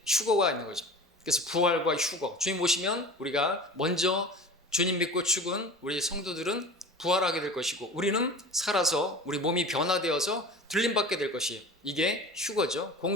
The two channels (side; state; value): both; normal; correlation 0.37